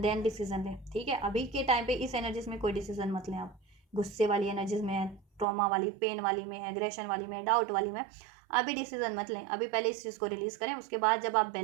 देन डिसीजन लें, ठीक है। अभी के टाइम पे इस एनर्जीज में कोई डिसीजन मत लें आप, गुस्से वाली एनर्जीज में है, ट्रॉमा वाली, पेन वाली में है, एग्रेशन वाली में, डाउट वाली में, अभी डिसीजन मत लें, अभी पहले इस चीज़ को रिलीज करें, उसके बाद जब आप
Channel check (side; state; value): left; drops out; at 5.5 s